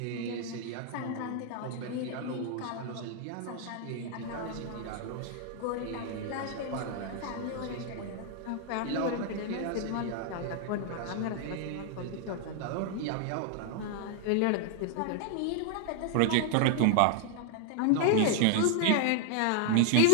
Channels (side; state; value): both; different; correlation 0.00